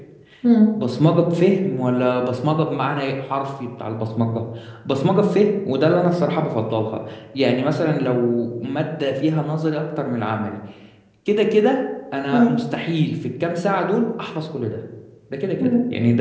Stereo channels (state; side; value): identical; both; correlation 1.00